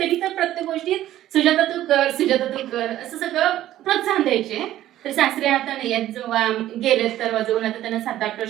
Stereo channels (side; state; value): left; quieter; 13.5 dB